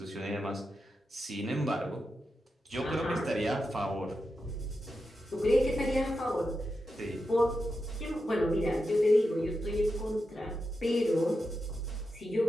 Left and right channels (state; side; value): normal; both; correlation 0.88